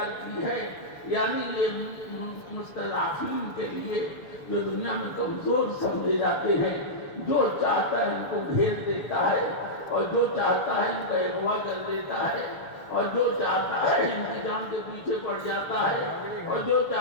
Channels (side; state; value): right; late; 6.8 ms